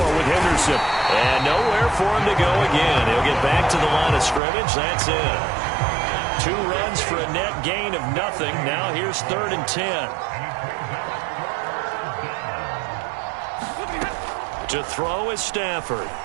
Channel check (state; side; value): drops out; left; at 4.4 s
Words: with Henderson. And nowhere for him to go again. He'll get back to the line of scrimmage. That's it. 2 runs for a net gain of nothing. Now here's 3rd and 10. To throw is Stafford.